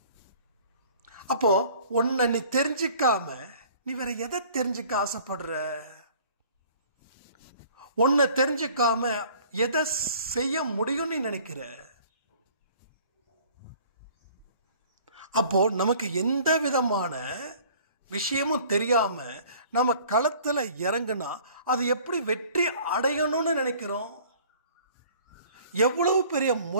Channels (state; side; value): inverted; both; correlation -0.52